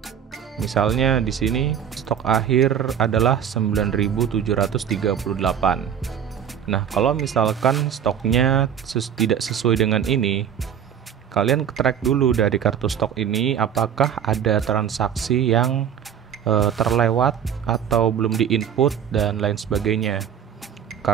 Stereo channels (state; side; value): quieter; left; 8.6 dB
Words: Misalnya di sini stok akhir adalah 9.738. Nah, kalau misalkan stoknya tidak sesuai dengan ini, kalian track dulu dari kartu stok ini apakah ada transaksi yang terlewat atau belum diinput dan lain sebagainya.